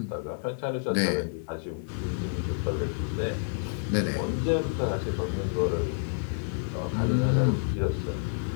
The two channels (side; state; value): right; silent; digital silence